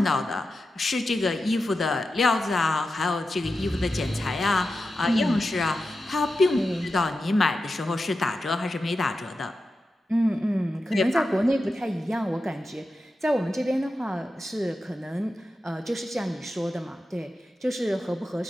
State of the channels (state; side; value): normal; both; correlation 0.91